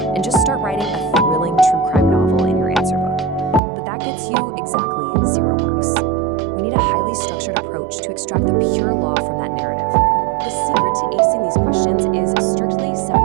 and just start writing a thrilling true crime novel in your answer book. But that gets you exactly 0 marks. We need a highly structured approach to extract the pure law from that narrative. The secret to acing these questions is strictly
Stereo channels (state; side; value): drops out; left; at 3.6 s